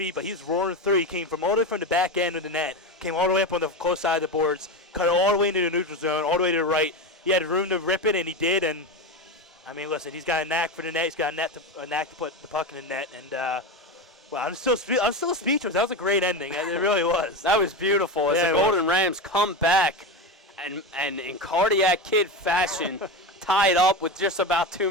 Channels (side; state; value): both; normal; correlation 0.19